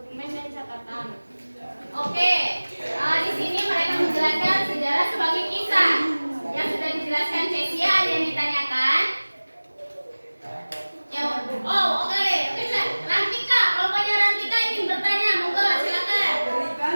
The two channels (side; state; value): both; inverted; correlation -1.00